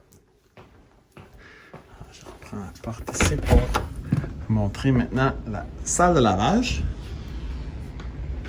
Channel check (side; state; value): both; identical; correlation 1.00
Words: Je reprends la porte ici pour vous montrer maintenant la salle de lavage